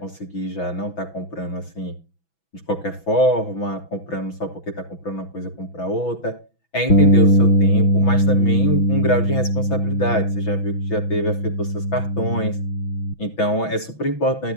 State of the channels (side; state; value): right; late; 6.1 ms